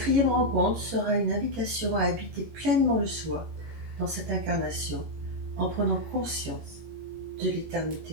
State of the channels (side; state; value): left; late; 18 ms